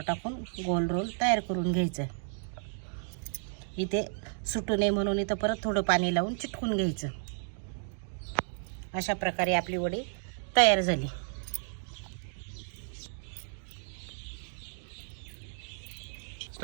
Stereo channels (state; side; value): silent; left; digital silence